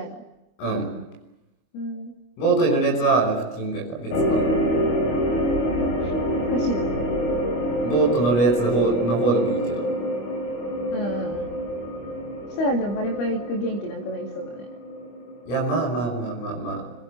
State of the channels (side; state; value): right; late; 25 ms